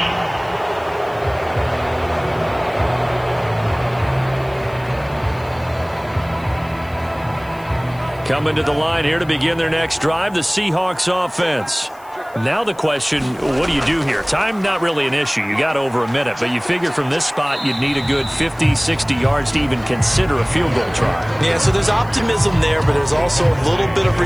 Coming to the line here to begin their next drive, the Seahawks offense. Now the question, what do you do here? Time, not really an issue. You got over a minute, but you figure from this spot you'd need a good 50, 60 yards to even consider a field goal try. Yeah, so there's optimism there, but there's also a little bit of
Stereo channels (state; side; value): noise; left; hiss, 27 dB below the sound